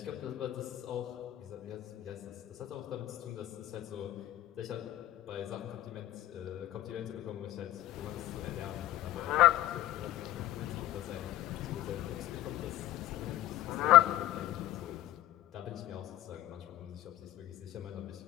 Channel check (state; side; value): quieter; right; 14.9 dB